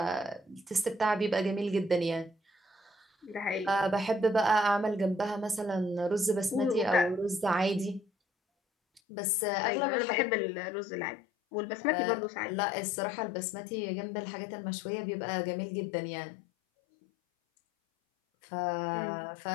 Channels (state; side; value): drops out; right; at 9.0 s